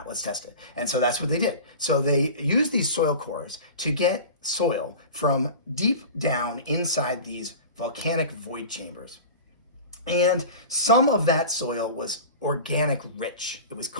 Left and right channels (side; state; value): both; inverted; correlation -0.34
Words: Let's test it. And so that's what they did. So they used these soil cores to get soil from deep down inside these volcanic void chambers. And some of that soil was organic rich. It was